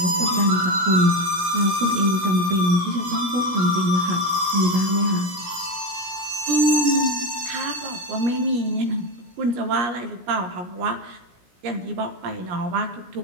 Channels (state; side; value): late; left; 17 ms